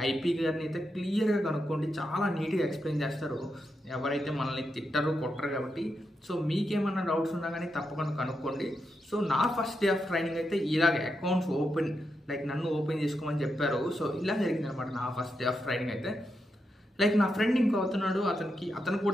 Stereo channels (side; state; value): both; normal; correlation 0.85